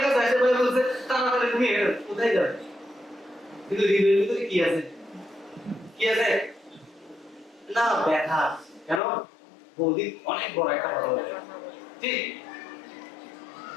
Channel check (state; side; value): drops out; right; at 9.0 s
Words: কাছে আসে, ভাই বলছে তাড়াতাড়ি তুমি কোথায় যাবে? কিন্তু হৃদয়ের ভিতরে কি আছে? কি আছে না? ব্যথা। কেন? বৌদি অনেক বড় একটা কথা বলে, ঠিক?